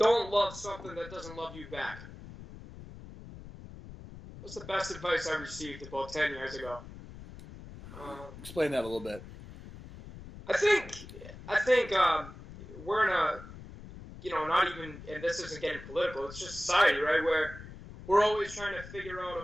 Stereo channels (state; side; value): noise; left; rumble, 15 dB below the sound